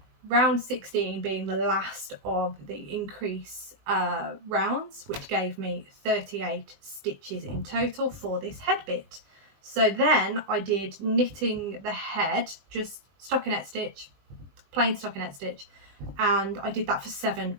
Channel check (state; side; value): late; left; 20 ms